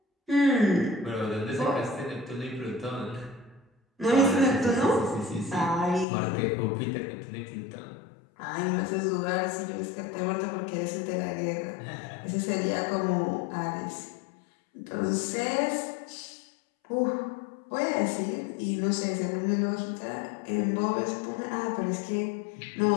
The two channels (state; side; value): drops out; right; at 6.1 s